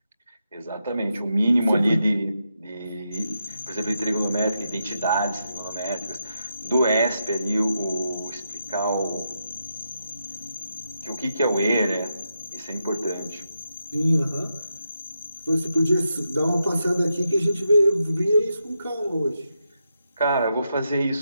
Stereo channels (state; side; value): inverted; both; correlation -0.85